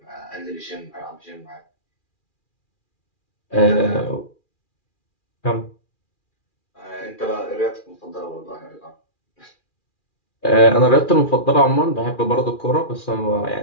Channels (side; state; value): right; late; 2.4 ms